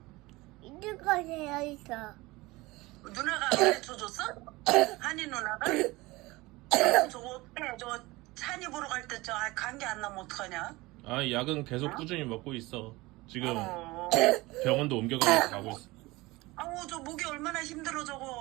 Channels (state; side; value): quieter; left; 21.3 dB